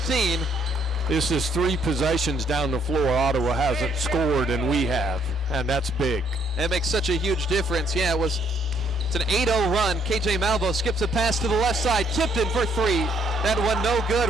This is 3 possessions down the floor. Ottawa hasn't scored, and we have, and that's big. That makes such a huge difference. Yeah, it's an 8-0 run. KJ Malvo skips a pass to the left side. Tipton for 3. That one no good.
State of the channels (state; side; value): normal; both; correlation 0.68